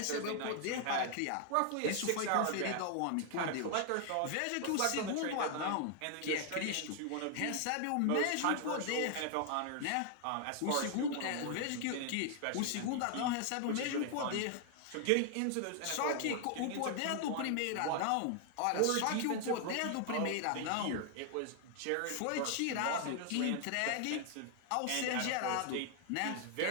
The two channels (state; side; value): different; both; correlation 0.00